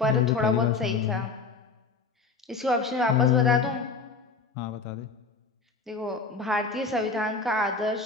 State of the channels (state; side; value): quieter; right; 4.5 dB